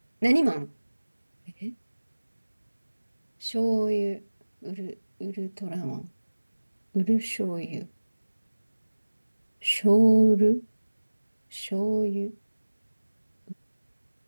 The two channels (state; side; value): inverted; both; correlation -1.00